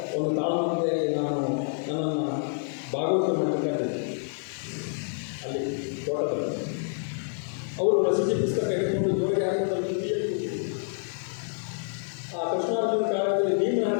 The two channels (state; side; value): silent; right; 60 dB below the other